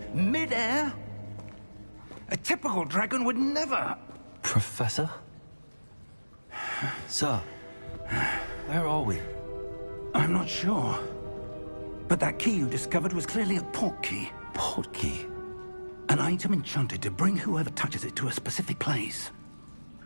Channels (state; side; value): inverted; both; correlation -1.00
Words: mid-air? A typical dragon would never... Professor? Sir, where are we? I'm not sure. But that key you discovered was clearly a port key. Port key? An item enchanted to bring whoever touches it to a specific place.